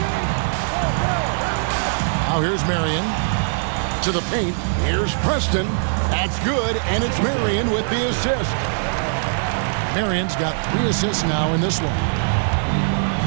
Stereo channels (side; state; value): left; silent; 65 dB below the other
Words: Now here's Marion to the paint. Here's Preston. That's good, and it's Marion with the assist. Marion's got 3 assists now in this one.